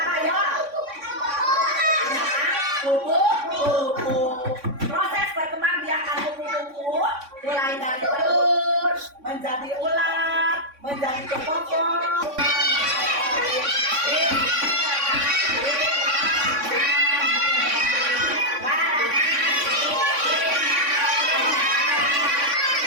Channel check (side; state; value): left; late; 3.6 ms